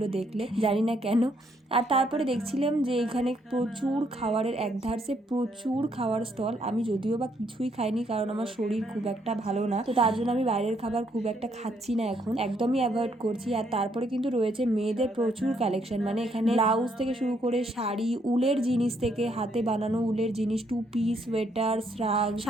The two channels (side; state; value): both; normal; correlation 0.72